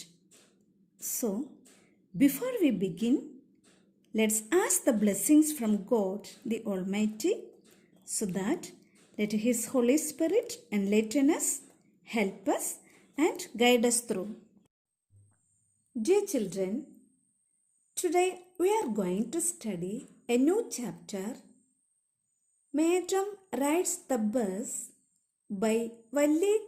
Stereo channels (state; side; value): identical; both; correlation 1.00